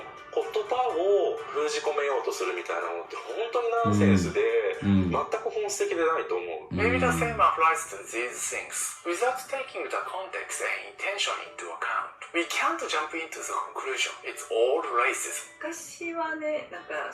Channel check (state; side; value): identical; both; correlation 1.00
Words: 言葉を封じ込めようとするみたいなのって本当にナンセンスで全く本質的でないと思う。 Maybe the same applies to these things. Without taking the context and intention into account, we can't jump into the conclusion. It's all racism. 昔はねなん